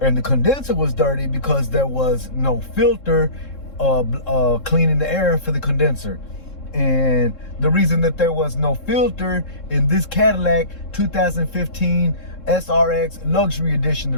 the condenser was dirty because there was no filter cleaning the air for the condenser. And the reason that there was no filter in this Cadillac 2015 SRX Luxury Edition, the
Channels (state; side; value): late; right; 3.7 ms